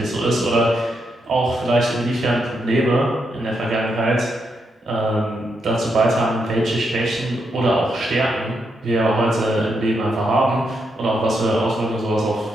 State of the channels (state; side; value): normal; both; correlation 0.81